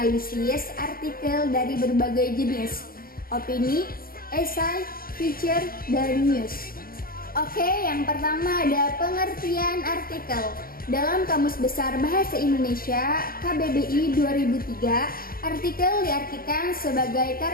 artikel dari berbagai jenis, opini, esai, feature, dan news. Oke, yang pertama ada pengertian artikel. Dalam Kamus Besar Bahasa Indonesia KBBI 2003, artikel diartikan sebagai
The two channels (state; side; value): late; right; 0.42 ms